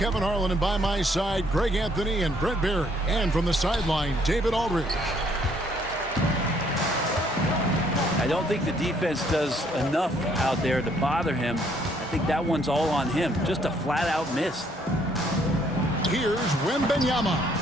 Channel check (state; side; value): normal; both; correlation 0.66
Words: Harlan, and by my side, Greg Anthony and Brent Barry. And from the sideline, David Aldridge. I don't think the defense does enough out there to bother him. I think that one's all on him. Just a flat-out miss. Here's Wembanyama.